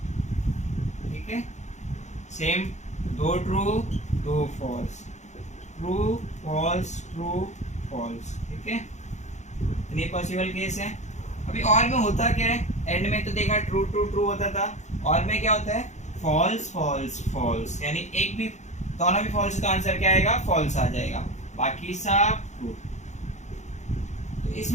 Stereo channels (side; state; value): right; late; 0.34 ms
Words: ठीक है, सेम, दो ट्रू दो false, true false true false, ठीक है, इतने पॉसिबल केस है। अभी और में होता क्या है, एंड में तो देखा ट्रू ट्रू ट्रू होता था, और में क्या होता है, फॉल्स फॉल्स फॉल्स, यानी एक भी, दोनों भी फॉल्स, तो आंसर क्या आएगा, फॉल्स आ जाएगा, बाकी सब ट्रू। तो